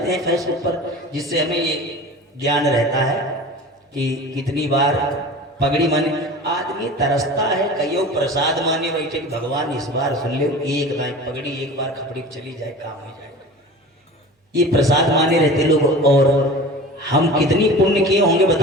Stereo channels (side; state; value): both; normal; correlation 0.37